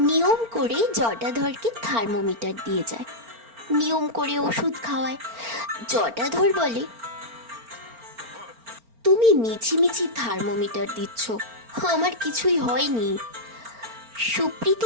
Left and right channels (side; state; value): left; late; 4.4 ms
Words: নিয়ম করে জটাধরকে থার্মোমিটার দিয়ে যায়, নিয়ম করে ওষুধ খাওয়ায়। জটাধর বলে, তুমি মিছিমিছি থার্মোমিটার দিচ্ছ, আমার কিছুই হয়নি।